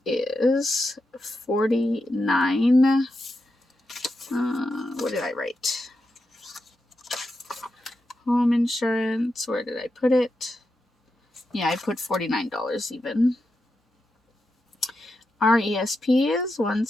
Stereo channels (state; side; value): normal; both; correlation 0.87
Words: is $49. What did I write? home insurance. Where did I put it? Yeah, I put $49 even. Our ESP is